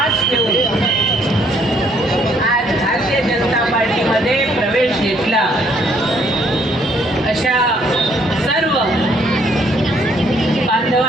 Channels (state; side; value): normal; both; correlation 0.66